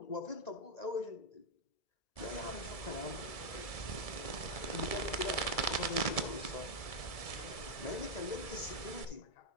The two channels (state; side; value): late; right; 1.7 ms